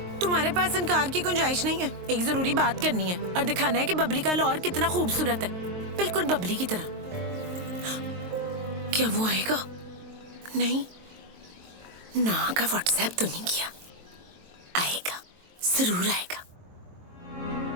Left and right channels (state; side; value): late; left; 23 ms